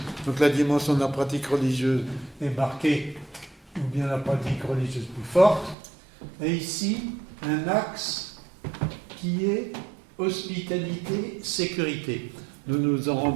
donc la dimension de la pratique religieuse est marquée, ou bien la pratique religieuse plus forte, et ici, un axe qui est hospitalité-sécurité. Nous nous en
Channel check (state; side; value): drops out; left; at 5.8 s